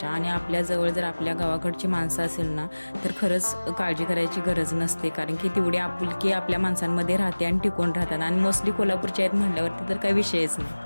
आणि आपल्याजवळ जर आपल्या गावाकडची माणसं असेल ना तर खरंच काळजी करायची गरज नसते, कारण की तेवढी आपुलकी आपल्या माणसांमध्ये राहते आणि टिकून राहतात. आणि मोस्टली कोल्हापूरच्या आहेत म्हटल्यावरती तर काही विषयच नाही.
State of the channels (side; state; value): both; inverted; correlation -1.00